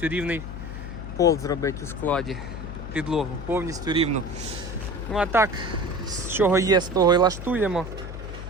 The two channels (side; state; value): left; noise; hum, 9 dB below the sound